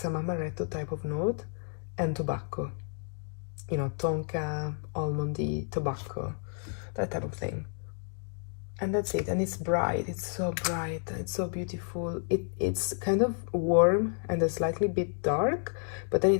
amaretto type of note, and tobacco, you know, tonka, almondy, tobacco, that type of thing. And that's it. And it's bright, it's so bright, it's so beautiful. It's kind of warm and a slightly bit dark, but then it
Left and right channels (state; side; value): silent; right; 57 dB below the other